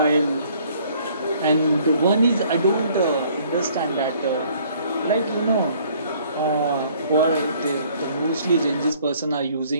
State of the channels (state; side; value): inverted; both; correlation -0.59